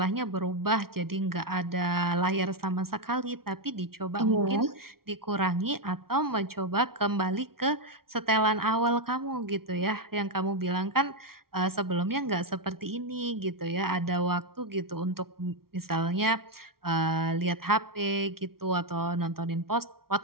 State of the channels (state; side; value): late; left; 0.94 ms